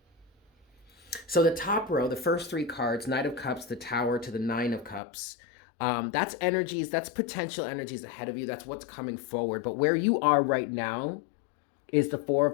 So the top row, the first 3 cards, Knight of Cups, the Tower to the 9 of Cups, that's energies, that's potential energies ahead of you. That's what's coming forward. But where you are right now is the 4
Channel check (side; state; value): right; drops out; at 5.0 s